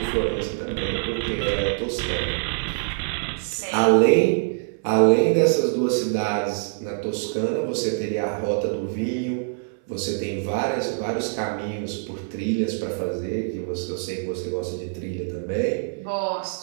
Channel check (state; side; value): silent; left; 58 dB below the other